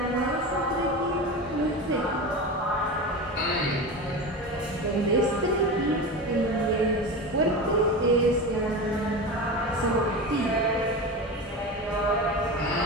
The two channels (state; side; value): normal; both; correlation 0.25